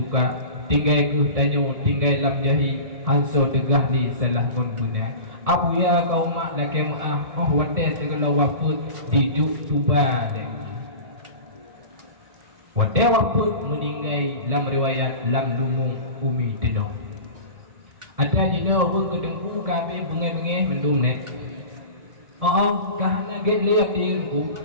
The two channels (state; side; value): late; left; 1.7 ms